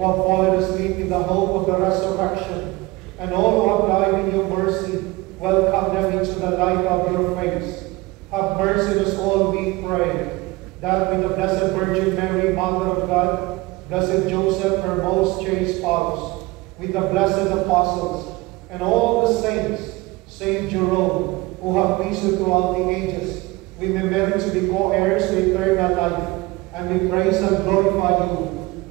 have fallen asleep in the hope of the resurrection, and all who have died in your mercy. Welcome them into the light of your face. Have mercy on us all, we pray, that with the Blessed Virgin Mary, Mother of God, Blessed Joseph, her most chaste spouse, with the blessed apostles, and all the saints, Saint Jerome, who have pleased throughout the ages, we may merit to be co-heirs to eternal life, and we praise and glorify you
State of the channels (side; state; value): left; quieter; 21.7 dB